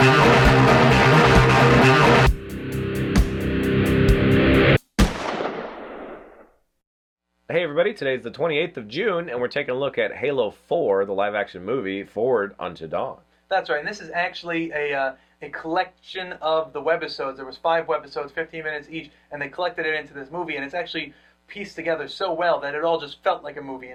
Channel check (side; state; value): both; identical; correlation 1.00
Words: Hey everybody, today's the 28th of June, and we're taking a look at Halo 4, the live-action movie, Forward Unto Dawn. That's right, and this is actually a collection of the webisodes. There was 5 webisodes, 15 minutes each, and they collected it into this movie, and it's actually pieced together so well that it all just felt like a movie